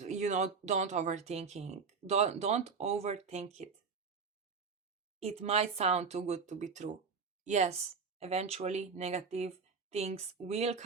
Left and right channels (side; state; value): left; quieter; 5.3 dB